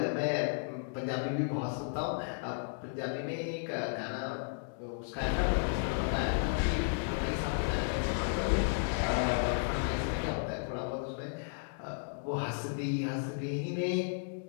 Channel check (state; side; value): silent; right; digital silence